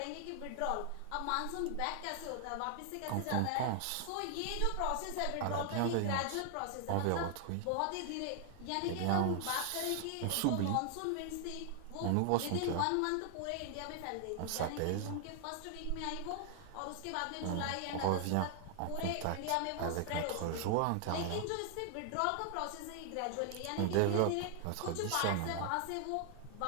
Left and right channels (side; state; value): both; different; correlation 0.00